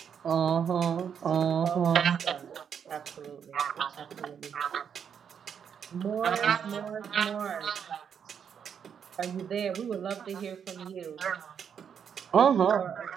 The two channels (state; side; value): quieter; left; 7.7 dB